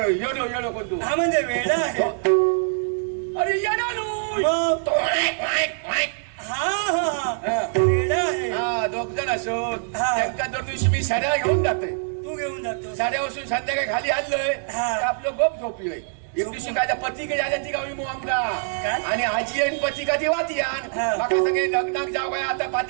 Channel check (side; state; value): left; silent; digital silence